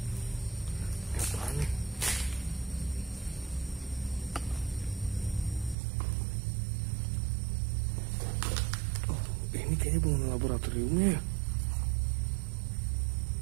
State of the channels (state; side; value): drops out; left; at 5.8 s